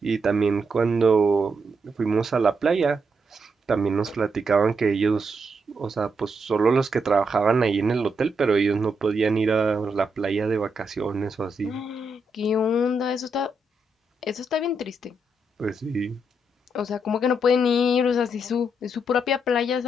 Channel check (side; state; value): both; normal; correlation 0.80